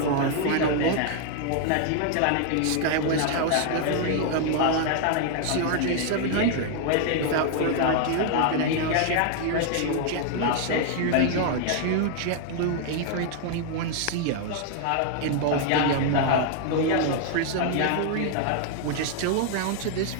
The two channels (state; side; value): different; both; correlation 0.00